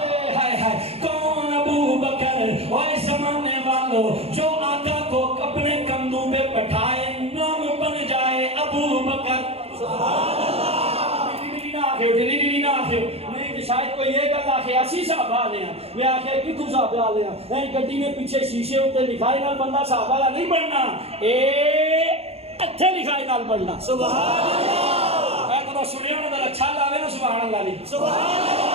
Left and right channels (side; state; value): left; late; 0.29 ms